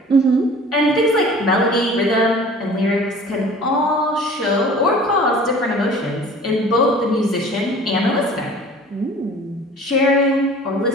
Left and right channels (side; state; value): both; normal; correlation 0.45